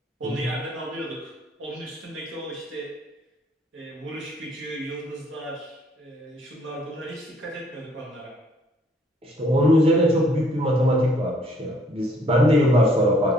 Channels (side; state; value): both; normal; correlation 0.63